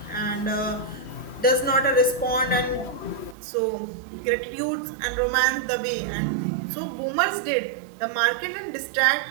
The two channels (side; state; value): left; drops out; at 3.4 s